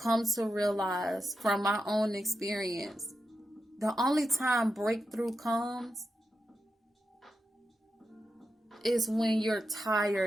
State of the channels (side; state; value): both; normal; correlation 0.87